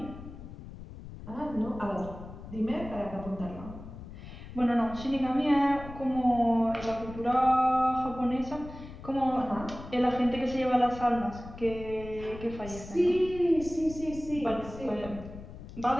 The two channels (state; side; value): noise; left; rumble, 13 dB below the sound